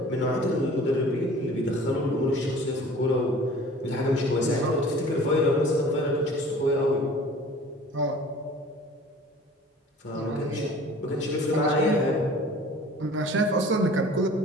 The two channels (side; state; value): both; normal; correlation 0.46